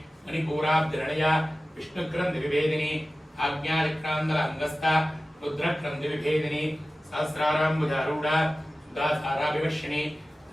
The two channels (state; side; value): normal; both; correlation 0.96